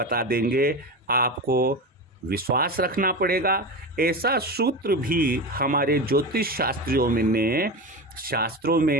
देंगे। आपको विश्वास रखना पड़ेगा। ऐसा सूत्र भी हमारे ज्योतिष शास्त्रों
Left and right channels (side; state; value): both; normal; correlation 0.23